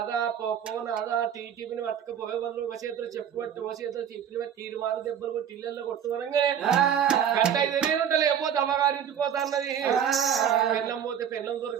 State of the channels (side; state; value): left; quieter; 8.8 dB